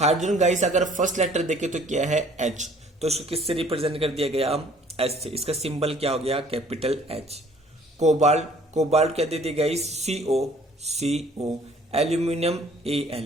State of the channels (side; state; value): both; normal; correlation 0.55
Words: guys अगर फर्स्ट लेटर देखे तो क्या है? H। तो इसको किससे रिप्रेजेंट कर दिया गया? H से। इसका सिंबल क्या हो गया? Capital H। कोबाल्ट, कोबाल्ट क्या दे दिया guys? CO, CO। Aluminium